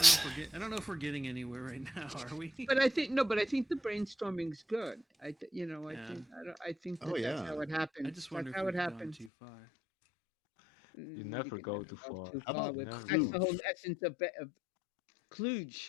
I don't know if we're getting anywhere right now, are we? But I think the brainstorming's good. I think that's how it happens. I just wonder that's if how it we've happens. gone too far. You never go too far. How about that's the whole essence of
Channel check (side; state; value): right; drops out; at 9.3 s